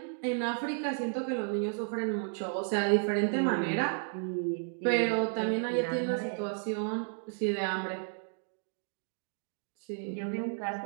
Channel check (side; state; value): left; silent; 56 dB below the other